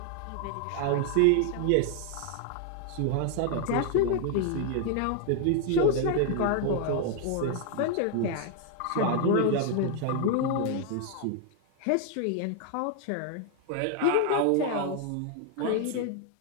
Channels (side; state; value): both; different; correlation 0.00